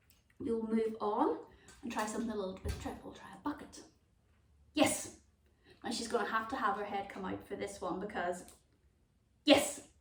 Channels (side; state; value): both; identical; correlation 1.00